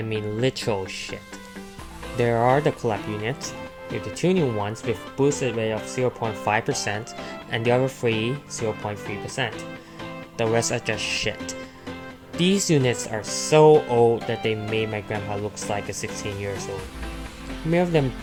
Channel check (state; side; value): identical; both; correlation 1.00